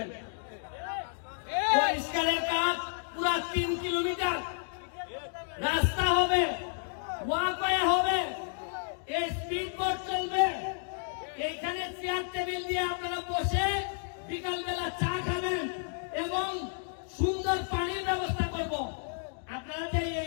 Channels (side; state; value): right; silent; digital silence